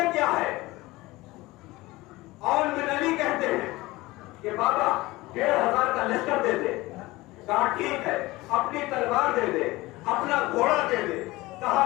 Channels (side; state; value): right; quieter; 20.0 dB